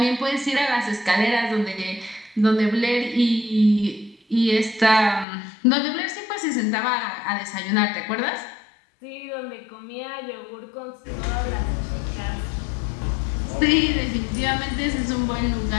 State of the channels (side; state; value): right; drops out; at 5.2 s